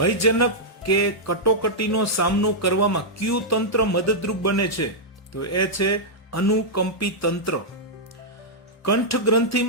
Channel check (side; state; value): both; normal; correlation -0.07